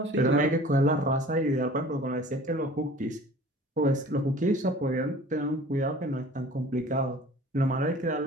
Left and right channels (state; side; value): normal; both; correlation 0.46